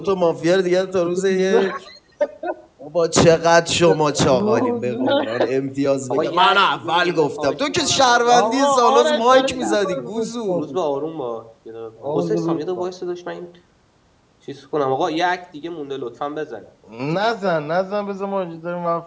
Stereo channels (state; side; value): identical; both; correlation 1.00